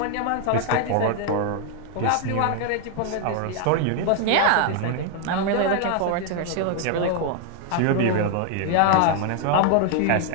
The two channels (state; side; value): different; both; correlation 0.00